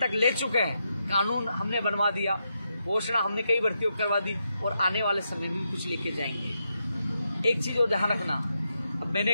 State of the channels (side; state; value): both; inverted; correlation -0.84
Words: ले चुके हैं। कानून हमने बनवा दिया, घोषणा हमने कई भर्तियों करवा दी, और आने वाले समय में कुछ लेके जाएंगे। एक चीज़ और ध्यान रखना, अब मैंने